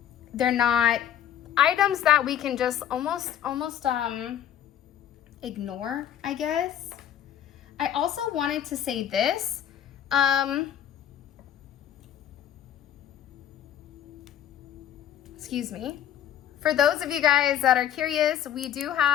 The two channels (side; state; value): right; quieter; 10.4 dB